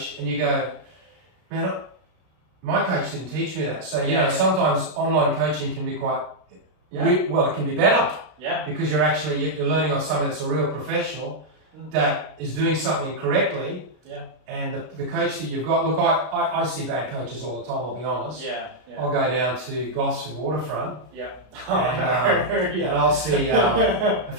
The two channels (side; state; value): left; late; 33 ms